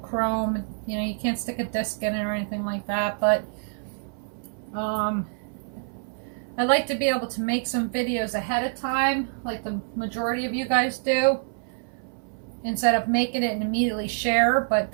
You know, you can't stick a disc in it or anything like that, but I like to be able to make some videos ahead of time, like the majority of you guys do, instead of making it and immediately share. But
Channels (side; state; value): left; silent; 59 dB below the other